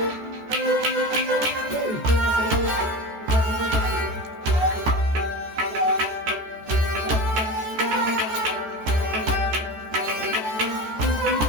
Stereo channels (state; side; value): late; left; 14 ms